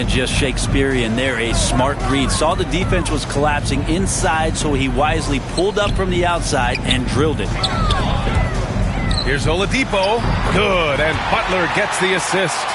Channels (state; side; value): identical; both; correlation 1.00